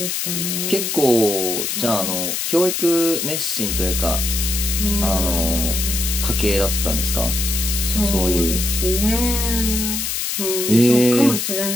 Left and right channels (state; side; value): noise; left; hiss, 1 dB below the sound